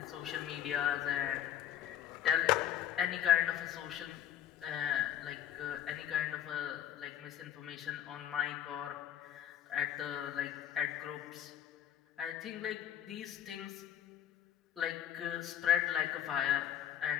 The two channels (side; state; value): right; quieter; 10.8 dB